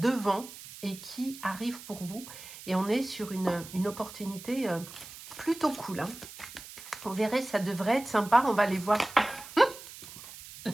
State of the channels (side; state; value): right; noise; hiss, 15 dB below the sound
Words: et qui arrive pour vous. Et on est sur une opportunité plutôt cool. Hein. Vous verrez, ça devrait être sympa. On va aller voir la